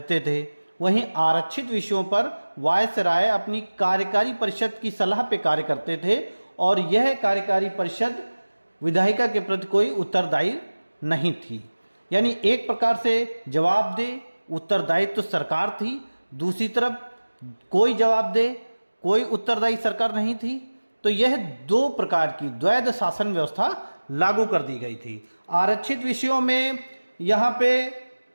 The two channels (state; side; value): inverted; both; correlation -1.00